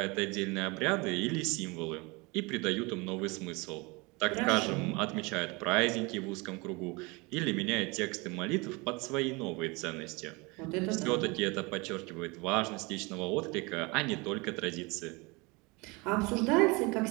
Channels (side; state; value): left; quieter; 26.7 dB